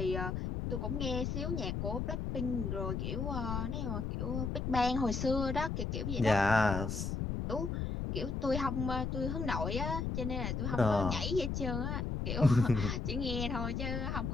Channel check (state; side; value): noise; left; rumble, 2 dB below the sound